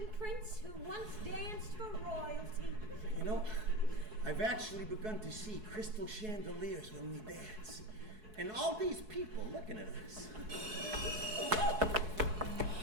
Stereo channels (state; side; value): late; left; 4.7 ms